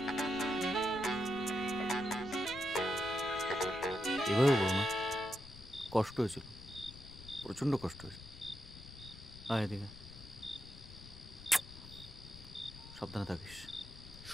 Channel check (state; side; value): noise; left; rumble, 16 dB below the sound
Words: এভাবে বলো না, কষ্ট হয়েছিল, প্রচণ্ড কষ্ট হয়েছে। আয় এদিকে, সাবধানে থাকিস,